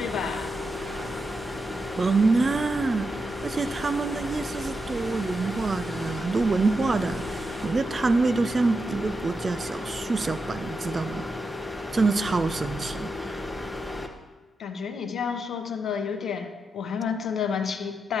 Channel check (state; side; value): normal; both; correlation 0.86